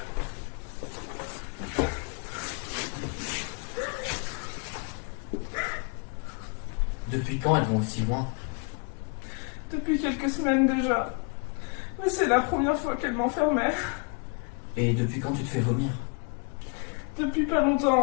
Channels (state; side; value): quieter; right; 36.8 dB